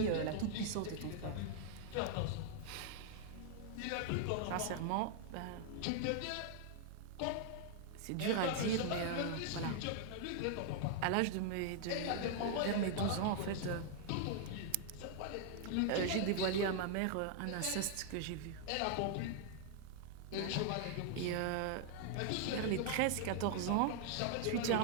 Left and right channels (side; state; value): both; different; correlation 0.00